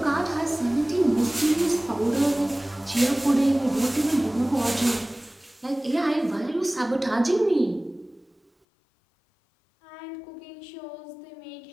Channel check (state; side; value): drops out; right; at 8.5 s